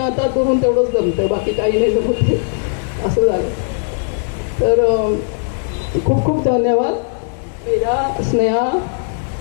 धरून तेवढंच जमतं, बाकी काही नाही जमत, असं झालं. तर खूप खूप धन्यवाद मेरा, स्नेहा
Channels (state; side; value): silent; right; 61 dB below the other